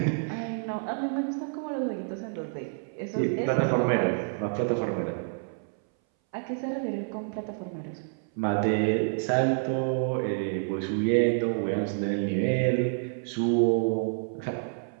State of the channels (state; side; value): silent; left; 59 dB below the other